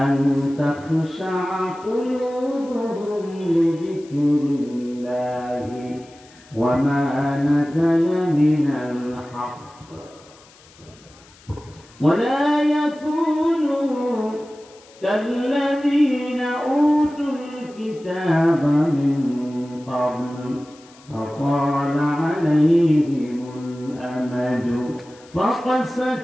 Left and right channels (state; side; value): noise; left; hiss, 26 dB below the sound